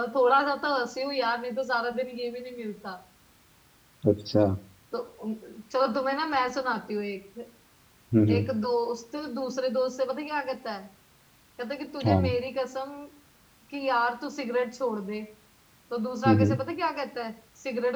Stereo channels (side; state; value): both; identical; correlation 1.00